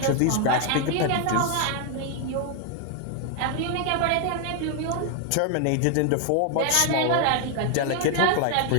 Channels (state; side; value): different; both; correlation 0.00